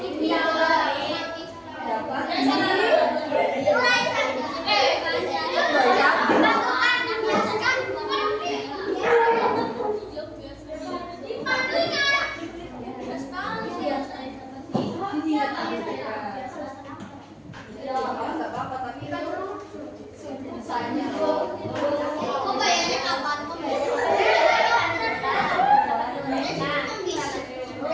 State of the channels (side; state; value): both; identical; correlation 1.00